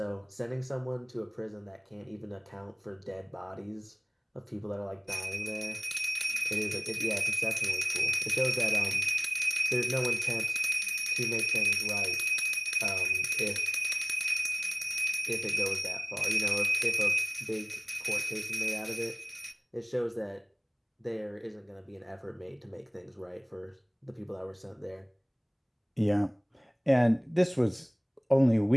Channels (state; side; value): identical; both; correlation 1.00